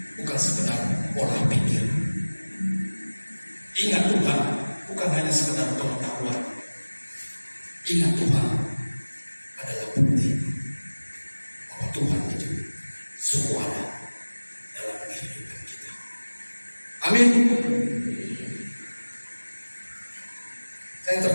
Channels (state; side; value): inverted; both; correlation -1.00